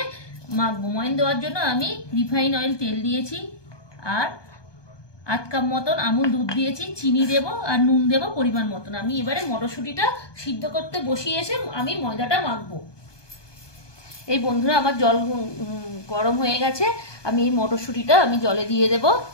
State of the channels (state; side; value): late; right; 1.2 ms